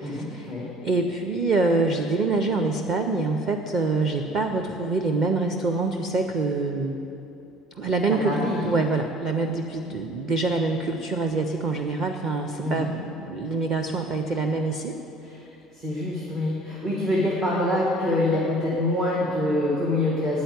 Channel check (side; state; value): both; normal; correlation 0.51